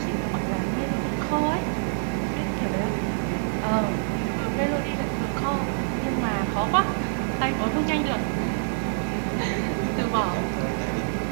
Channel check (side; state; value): left; silent; 60 dB below the other